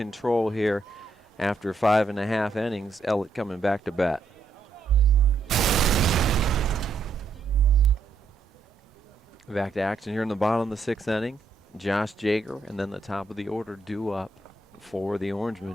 here. After 5.5 innings, Ellet coming back to bat. Back to action here in the bottom of the 6th inning. Josh Jager and then the top of the order due up for the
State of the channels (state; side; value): quieter; left; 3.5 dB